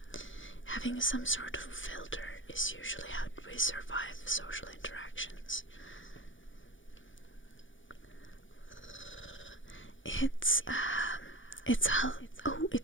having some sort of filter is usually how we survive social interactions. It's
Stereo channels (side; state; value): right; late; 0.56 ms